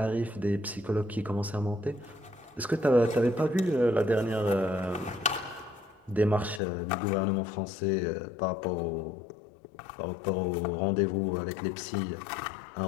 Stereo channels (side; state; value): right; drops out; at 6.6 s